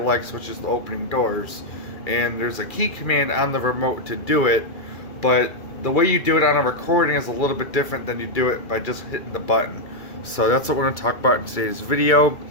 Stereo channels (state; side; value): late; right; 2.3 ms